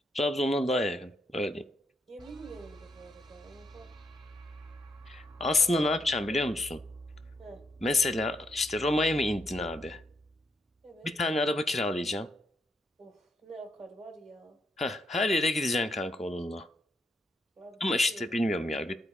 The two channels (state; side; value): normal; both; correlation 0.78